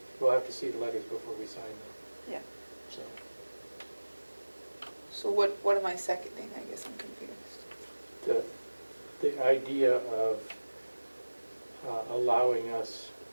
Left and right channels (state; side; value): inverted; both; correlation -1.00